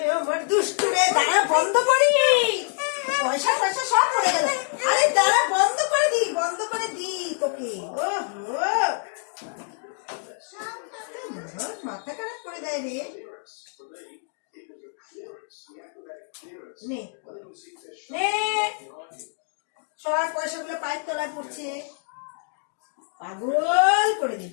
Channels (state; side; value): silent; right; 56 dB below the other